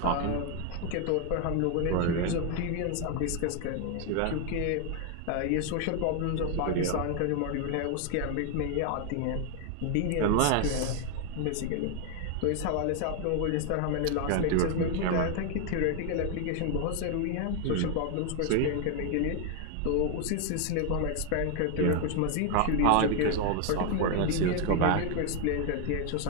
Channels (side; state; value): both; different; correlation 0.00